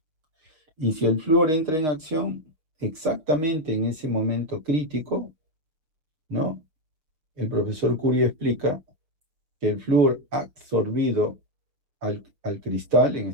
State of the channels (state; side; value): late; left; 6.4 ms